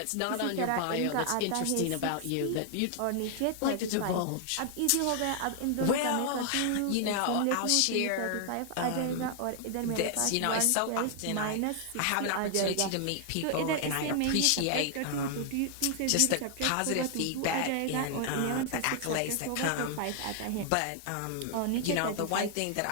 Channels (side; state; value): both; different; correlation 0.00